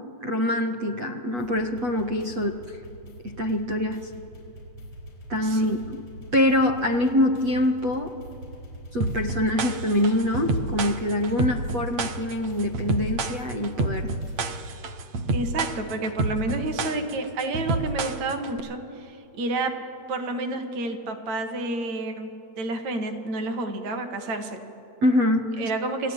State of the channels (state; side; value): late; left; 8.6 ms